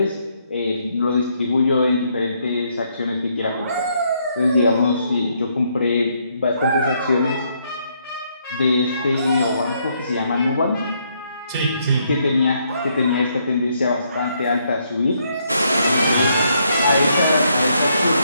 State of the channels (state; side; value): inverted; both; correlation -0.73